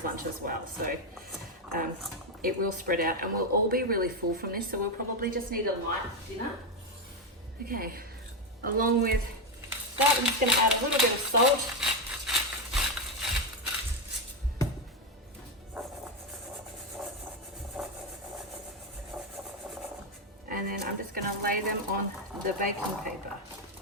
lunch as well. So it will spread out and we'll all be really full from this. So we'll probably just need a light dinner. Okay, along with that, I'm just going to add a little bit of salt. And then I'm just going to lay them on the baking paper.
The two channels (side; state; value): both; normal; correlation 0.07